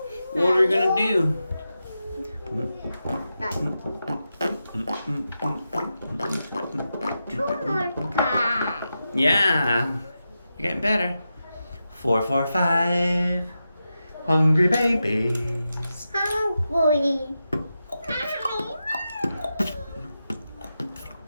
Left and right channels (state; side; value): inverted; both; correlation -0.89